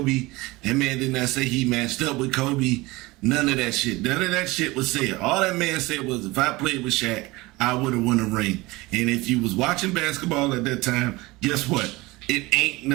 That man did not say he matched up with Kobe. None of that shit. None of that shit was said. All that man said was, if I played with Shaq, I would have won a ring. And if you was watching basketball at that time, guess what? It ain't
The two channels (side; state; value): left; quieter; 21.5 dB